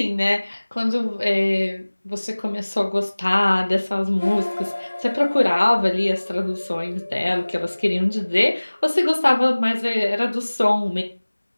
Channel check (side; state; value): both; inverted; correlation -1.00